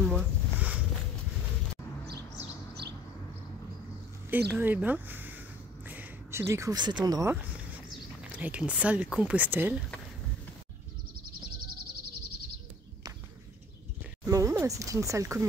Eh ben, je découvre cet endroit avec une salle Compostelle. Bon, c'est une salle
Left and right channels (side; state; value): both; normal; correlation 0.52